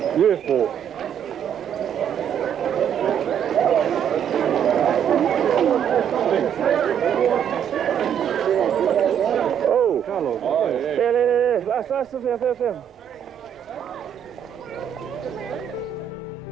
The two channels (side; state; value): left; quieter; 8.8 dB